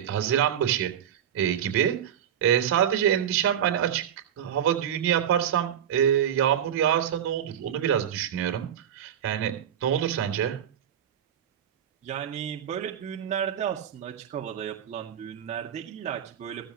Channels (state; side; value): quieter; left; 9.5 dB